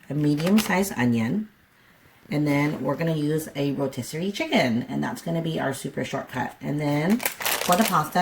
a medium-sized onion, and then we're going to use a rotisserie chicken, and that's going to be our super shortcut. And then for the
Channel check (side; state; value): both; identical; correlation 1.00